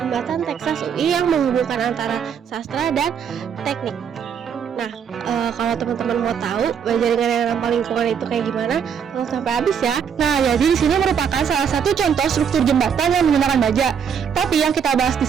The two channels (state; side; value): quieter; left; 7.5 dB